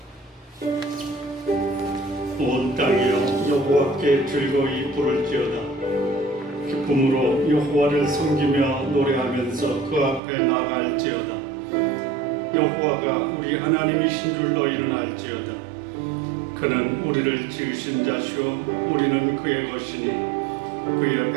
온 땅이여 여호와께 즐거이 부를지어다. 기쁨으로 여호와를 섬기며 노래하면서 그 앞에 나아갈지어다. 여호와가 우리 하나님이신 줄 너희는 알지어다. 그는 우리를 지으신 자시오 우리는 그의 것이니 그의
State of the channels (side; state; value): left; drops out; at 10.2 s